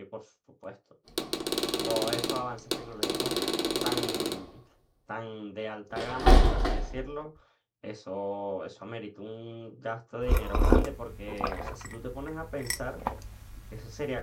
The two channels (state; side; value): identical; both; correlation 1.00